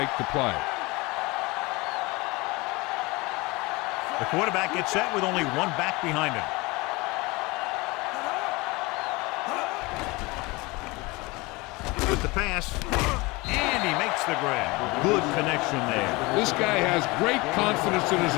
the play. The quarterback gets set with only one back behind him. With the pass, and he makes the grab. Good connection there. This guy has great confidence in his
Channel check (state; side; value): quieter; right; 23.9 dB